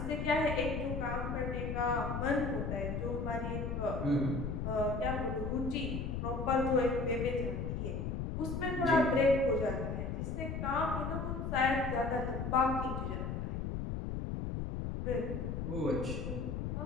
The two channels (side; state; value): left; noise; rumble, 3 dB below the sound